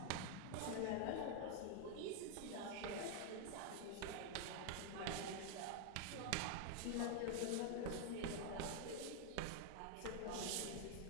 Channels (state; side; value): different; both; correlation 0.00